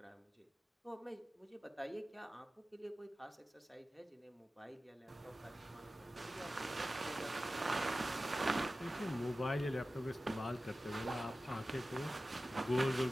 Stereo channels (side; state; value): both; normal; correlation 0.95